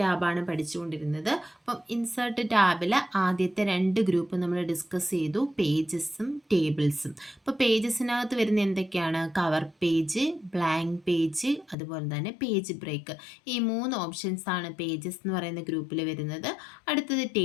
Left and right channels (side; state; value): right; drops out; at 11.8 s